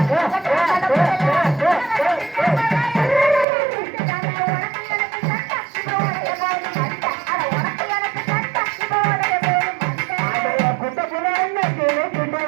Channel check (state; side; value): drops out; left; at 3.5 s